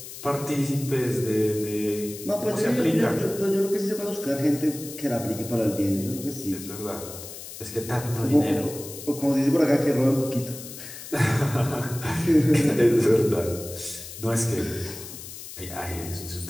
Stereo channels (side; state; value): left; noise; hiss, 12 dB below the sound